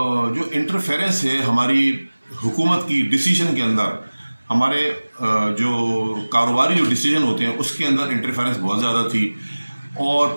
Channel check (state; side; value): inverted; both; correlation -1.00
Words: इंटरफेरेंस है हमारी हुकूमत की डिसीजन के अंदर, हमारे जो कारोबारी जो डिसीजन होते हैं उसके अंदर इंटरफेरेंस बहुत ज़्यादा थी। और